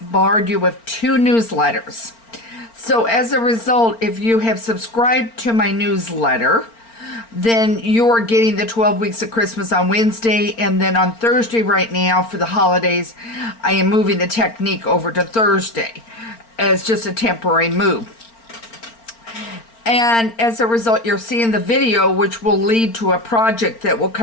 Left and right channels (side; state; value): right; late; 4.4 ms